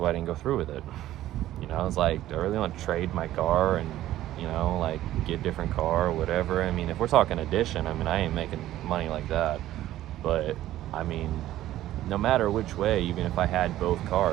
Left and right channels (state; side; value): quieter; left; 13.9 dB